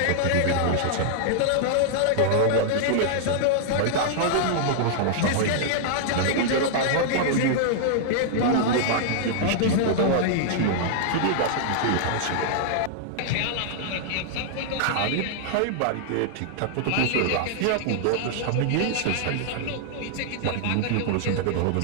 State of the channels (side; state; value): both; different; correlation -0.01